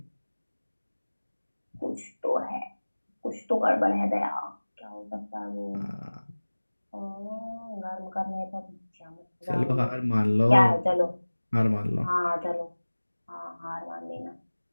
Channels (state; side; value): inverted; both; correlation -1.00